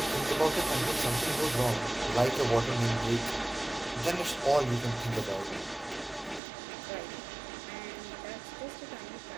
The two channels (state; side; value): drops out; left; at 6.4 s